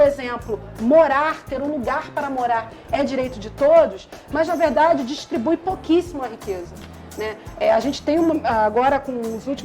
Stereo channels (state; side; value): identical; both; correlation 1.00